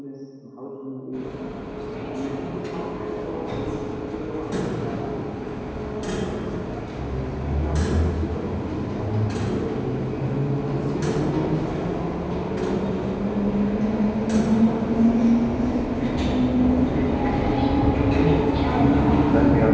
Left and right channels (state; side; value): identical; both; correlation 1.00